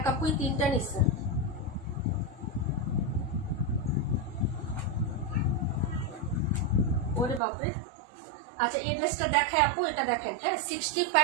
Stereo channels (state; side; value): drops out; left; at 7.4 s